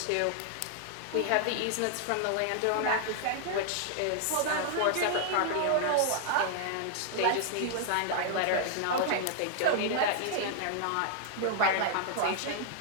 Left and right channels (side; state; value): both; different; correlation 0.00